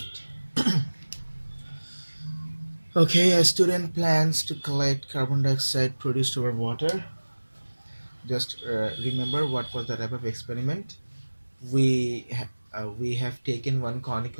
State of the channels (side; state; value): both; inverted; correlation -1.00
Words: Okay, a student plans to collect carbon dioxide produced over water. Just remember what was the type of experiment. We have taken one